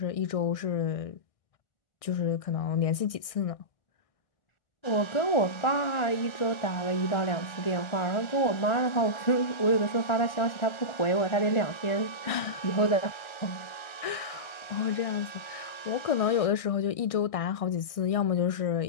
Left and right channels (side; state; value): right; late; 1.6 ms